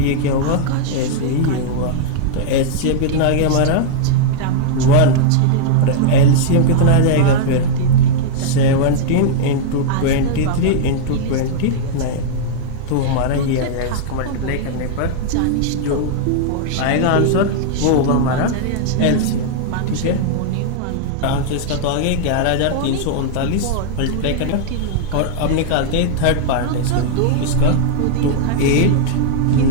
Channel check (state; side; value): different; both; correlation -0.01